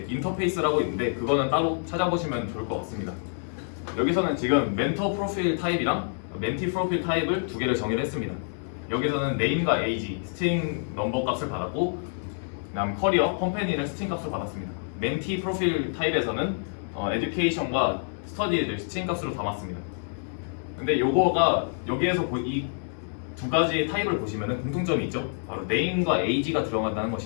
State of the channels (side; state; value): right; silent; digital silence